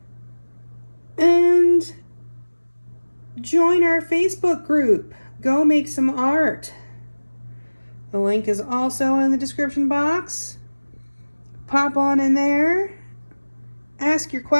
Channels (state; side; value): inverted; both; correlation -1.00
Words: And join our Facebook group. Go make some art. The link is also in the description box. Pop on in there, ask your